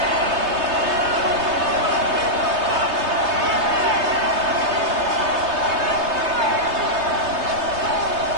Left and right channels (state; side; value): late; left; 3.3 ms